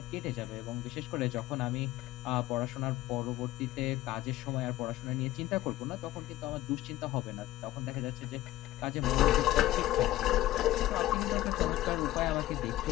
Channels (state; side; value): quieter; right; 15.5 dB